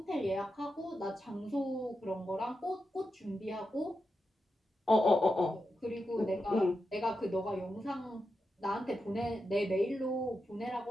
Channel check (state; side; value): normal; both; correlation 0.88